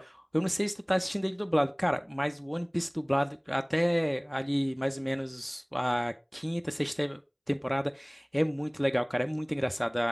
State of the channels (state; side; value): identical; both; correlation 1.00